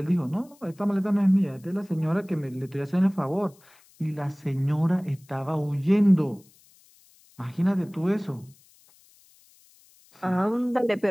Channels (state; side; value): noise; left; hiss, 29 dB below the sound